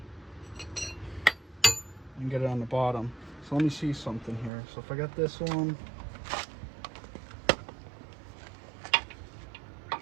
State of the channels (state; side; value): drops out; left; at 4.5 s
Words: and get it on the bottom. So let me see something here. So if I got this one,